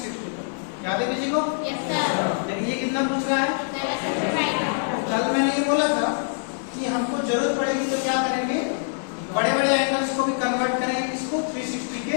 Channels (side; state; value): right; silent; 56 dB below the other